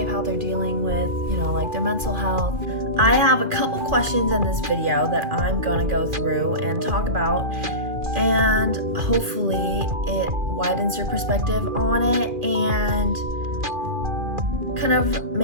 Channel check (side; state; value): left; late; 2.4 ms